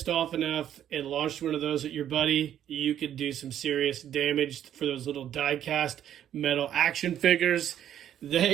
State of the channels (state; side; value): quieter; left; 10.6 dB